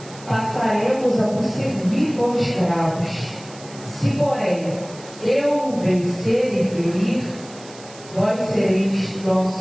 passaremos a vos servir como escravos. Se, porém, eu o vencer e ferir, vós sereis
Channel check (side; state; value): right; noise; hiss, 19 dB below the sound